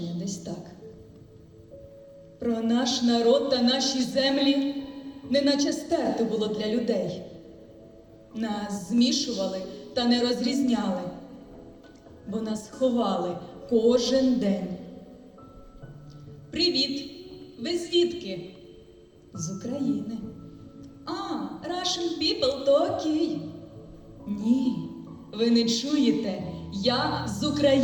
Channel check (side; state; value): both; identical; correlation 1.00